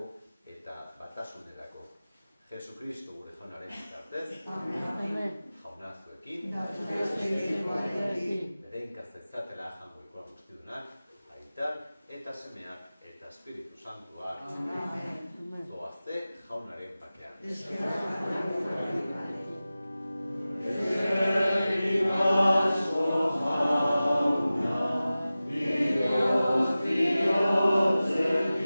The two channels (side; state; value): both; inverted; correlation -0.96